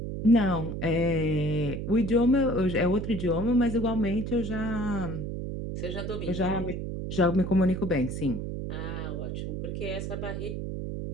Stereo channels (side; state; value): right; noise; hum, 5 dB below the sound